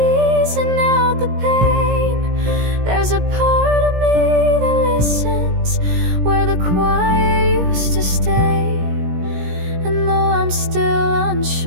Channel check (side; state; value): left; late; 17 ms